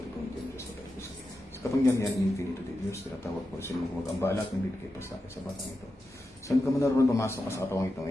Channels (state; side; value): normal; both; correlation 0.90